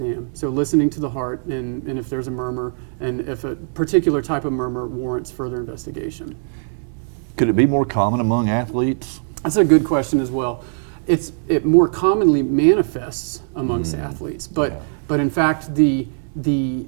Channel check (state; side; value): silent; left; 62 dB below the other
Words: So listening to the heart and if there's a murmur and if a particular type of murmur warrants further investigation. Could it be more common among athletes? That's a good question as well. It more commonly manifests amongst athletes, but in fact the